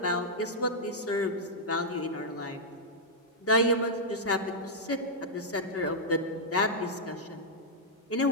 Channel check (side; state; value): both; normal; correlation -0.06